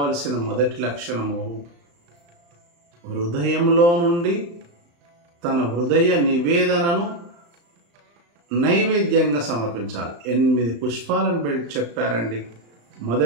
మొదటి లక్షణము హృదయంలో నుండి తన హృదయ నివేదనను నైవేద్యంగా సమర్పించాలి. 8 పుష్పాలను చెప్పారండి.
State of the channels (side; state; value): left; late; 35 ms